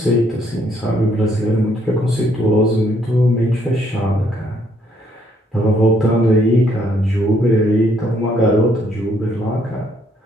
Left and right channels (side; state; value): both; normal; correlation 0.69